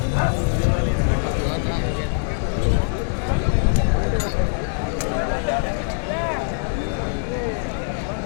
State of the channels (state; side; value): silent; right; digital silence